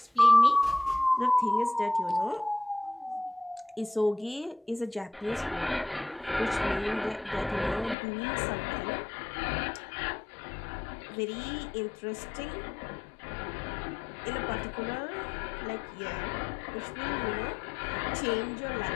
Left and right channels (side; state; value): right; drops out; at 8.0 s